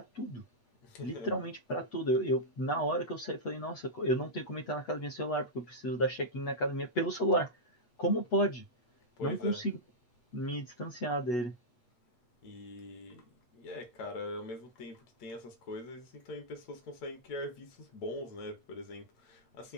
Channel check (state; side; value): late; right; 8.2 ms